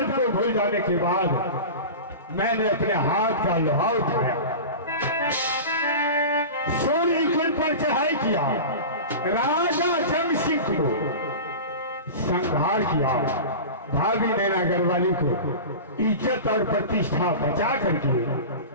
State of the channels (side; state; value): both; inverted; correlation -0.30